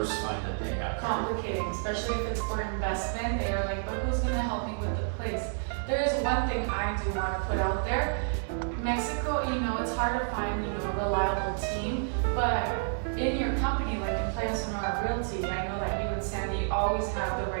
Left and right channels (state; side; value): silent; left; 58 dB below the other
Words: find that they have. Complicating, especially if it's for investment. They are like, but who's going to help me with the place? There is one thing I do want to put out there. Mexico, it's hard to find, a reliable team, but in your company, like in Playa Sonora Realty, I know that you and Sandy always have the